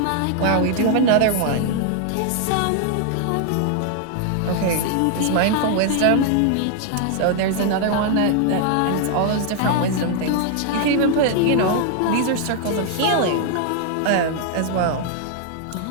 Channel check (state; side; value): different; both; correlation 0.00